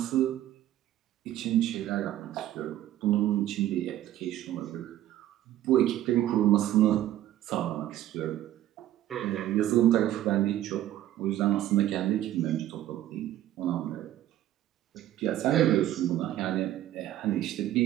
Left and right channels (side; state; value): left; quieter; 13.2 dB